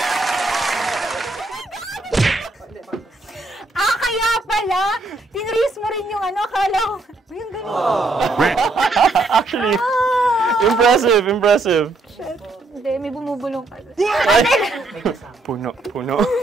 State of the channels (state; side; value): quieter; left; 3.1 dB